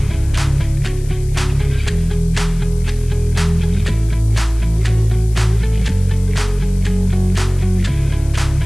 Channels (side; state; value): left; noise; hiss, 22 dB below the sound